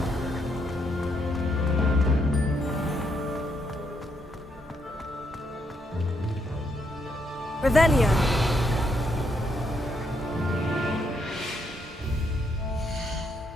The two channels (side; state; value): both; normal; correlation 0.76